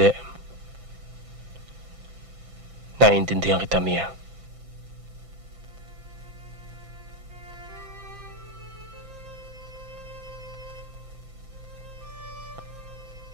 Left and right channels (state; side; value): late; left; 6.0 ms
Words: Naiintindihan kita, Mia.